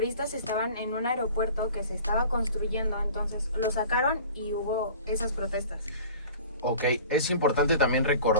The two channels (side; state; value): both; inverted; correlation -0.43